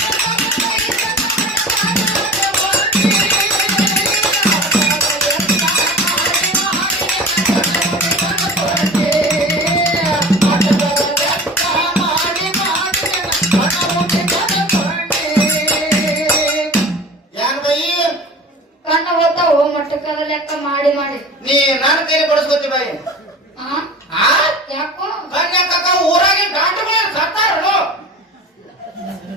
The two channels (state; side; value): normal; both; correlation 0.37